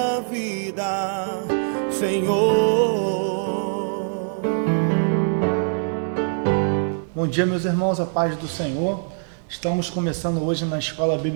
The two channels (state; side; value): silent; left; 63 dB below the other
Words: vida, Senhor. Bom dia, meus irmãos, a paz do Senhor. Estamos começando hoje na Escola